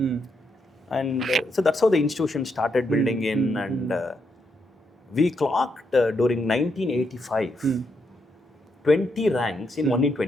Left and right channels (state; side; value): normal; both; correlation 0.80